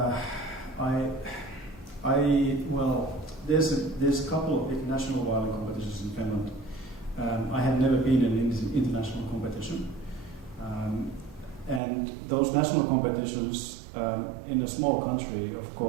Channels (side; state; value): left; drops out; at 11.8 s